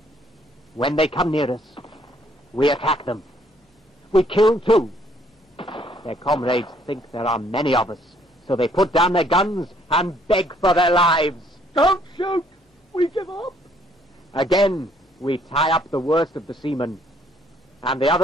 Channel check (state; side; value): normal; both; correlation 0.65